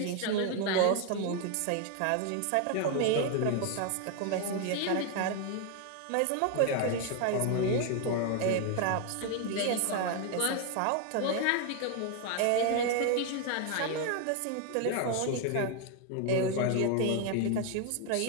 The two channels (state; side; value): different; both; correlation 0.01